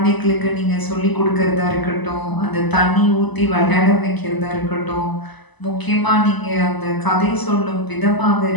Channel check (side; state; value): right; late; 1.0 ms